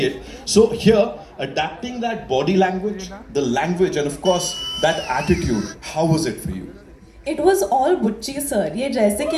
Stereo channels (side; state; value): both; identical; correlation 1.00